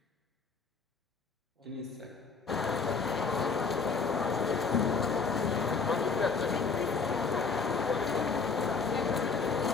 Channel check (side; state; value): right; quieter; 4.9 dB